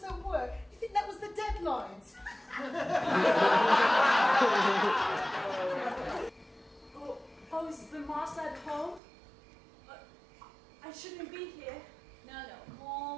at work. You think that was the deadlines? Oh, is the master at home? I shouldn't be here. No,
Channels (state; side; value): drops out; left; at 9.0 s